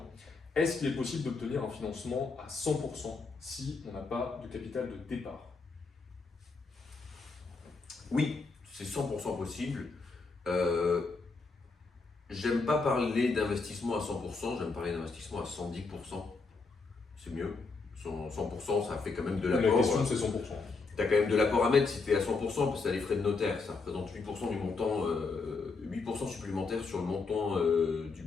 est-ce qu'il est possible d'obtenir un financement à 100% si on n'a pas de capital de départ? Oui, c'est 100% possible. J'aime pas parler d'investissement à 100%, j'aime parler d'investissement à 110%. C'est mieux. 100%, ça fait quand même de La l'apport. question, c'est 100%. Tu as quand même de l'apport à mettre si tu es à 100%, parce que tu as les frais de notaire. Ça représente 8% du montant, 8% supplémentaire sur le montant du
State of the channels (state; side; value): quieter; right; 4.2 dB